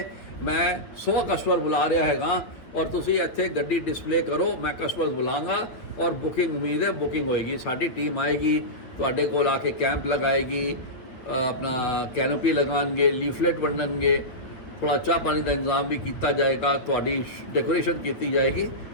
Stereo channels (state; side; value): late; right; 9.2 ms